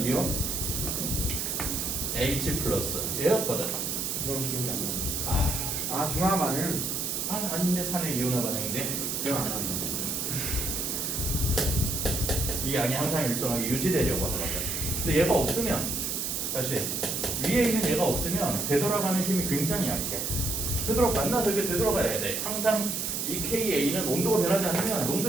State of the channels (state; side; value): noise; right; hiss, 1 dB below the sound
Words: H 플러스 얘였거든. 그건 기억이 안 나요. 아 중화반은 아닌데 산의 이온화 반응인데 기억 안 나요. 이 양이 항상 일정하게 유지되려고 하더라고요. 근데 얘가 없으면 다시 위에 있는 얘가 없으면 되돌아가는 힘이 굉장히 약해. 만나서 이렇게 되돌아가야 돼. 항상 이 KA는 온도가 변하지 않으면